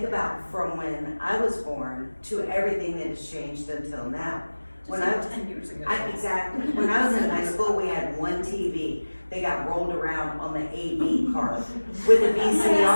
about from when I was born to everything that has changed until now. When I was 10 years ago. Exactly. When I was in high school, we had one TV. They got rolled around on the AV card with a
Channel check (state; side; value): inverted; both; correlation -1.00